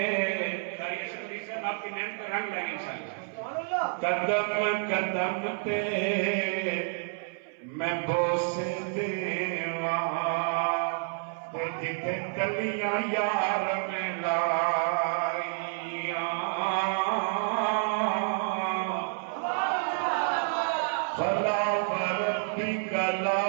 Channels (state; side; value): silent; left; 58 dB below the other